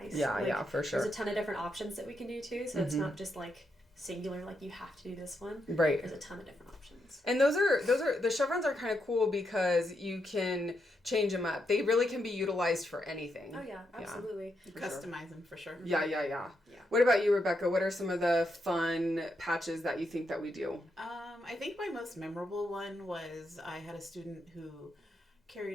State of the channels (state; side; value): normal; both; correlation 0.82